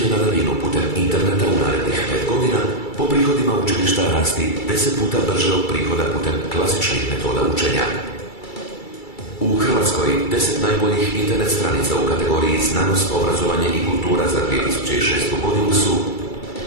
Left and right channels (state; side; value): late; right; 2.3 ms